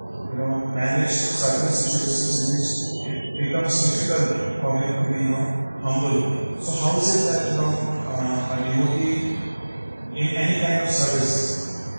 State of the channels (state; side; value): inverted; both; correlation -1.00